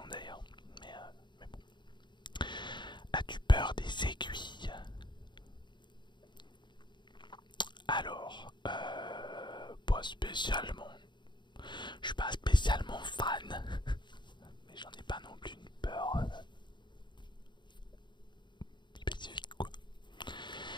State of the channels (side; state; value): right; late; 0.22 ms